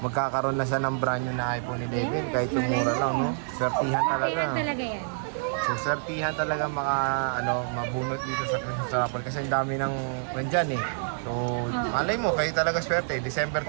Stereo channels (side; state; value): left; silent; digital silence